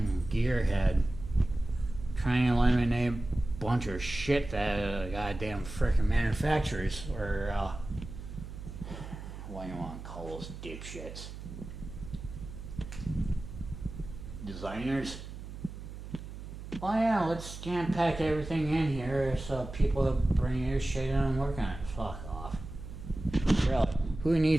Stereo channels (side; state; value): right; noise; hum, 11 dB below the sound